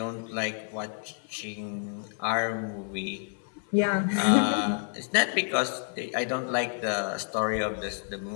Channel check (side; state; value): right; silent; 55 dB below the other